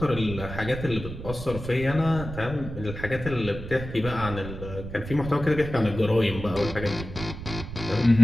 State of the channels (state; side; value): noise; right; rumble, 9 dB below the sound